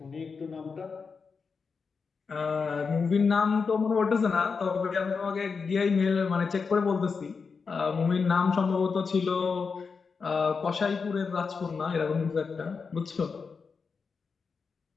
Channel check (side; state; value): right; quieter; 5.2 dB